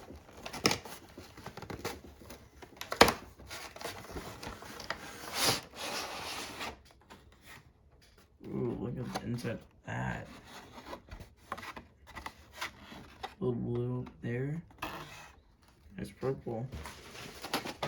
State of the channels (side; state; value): both; identical; correlation 1.00